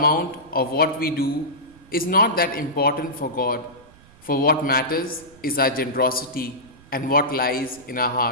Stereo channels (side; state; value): right; noise; rumble, 25 dB below the sound